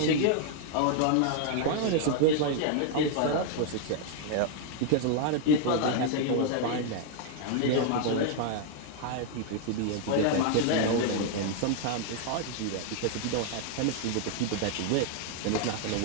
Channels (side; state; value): both; different; correlation 0.00